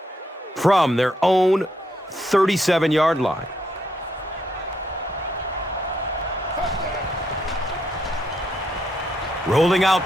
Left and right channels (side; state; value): both; normal; correlation 0.76